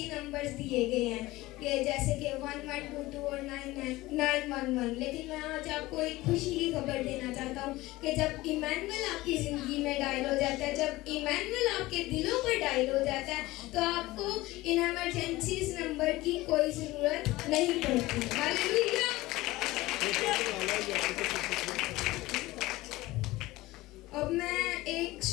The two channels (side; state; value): right; quieter; 18.9 dB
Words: نمبرز دیے گئے ہیں کہ جیسے کہ 1122 اور 911, لیکن میں آج آپ کو ایک خوشی کی خبر دینا چاہتا ہوں کہ جب ایمینول آپ کی زندگی میں ڈائل ہو جاتا ہے, جب ایمینول آپ کے دلوں پر ڈائل ہو جاتا ہے, تو آپ کو ان ایمرجنسیز نمبر کی کوئی ضرورت نہیں پڑتی. ہاللیلویا. اب میں ایک